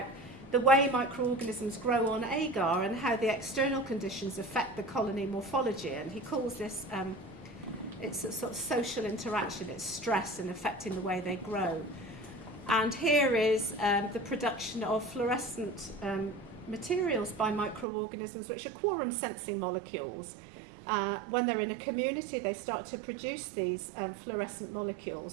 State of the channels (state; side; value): drops out; left; at 17.9 s